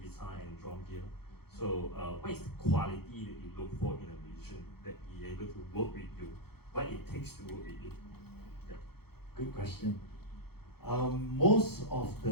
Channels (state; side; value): late; right; 0.96 ms